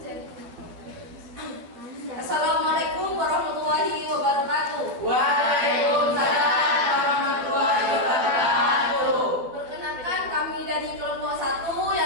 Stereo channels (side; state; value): left; late; 11 ms